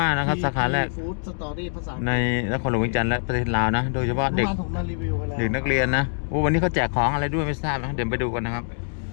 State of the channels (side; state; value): right; silent; digital silence